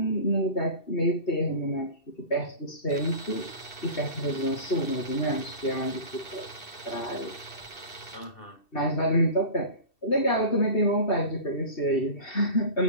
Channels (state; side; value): late; right; 2.7 ms